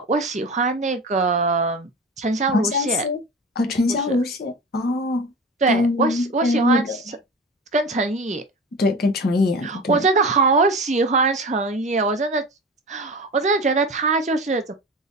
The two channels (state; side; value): normal; both; correlation 0.32